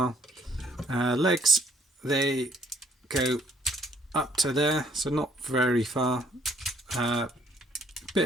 Legs, they go up to there, so not very far. Bit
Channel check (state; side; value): normal; both; correlation 0.64